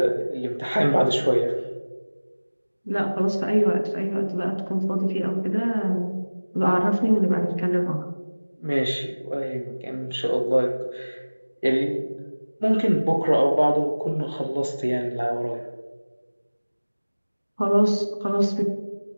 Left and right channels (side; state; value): both; inverted; correlation -1.00